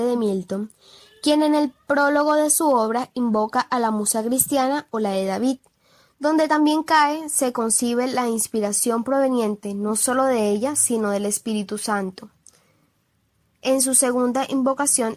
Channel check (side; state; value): both; identical; correlation 1.00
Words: de Milton, quien en el prólogo de su obra invoca a la musa cristiana o la de David, donde también se concibe la inspiración proveniente no solo de ella, sino del Espíritu Santo. En su segunda invocación,